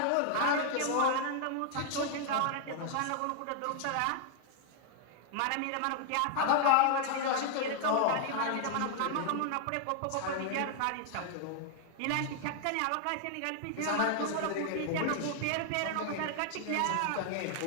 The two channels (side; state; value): both; different; correlation 0.00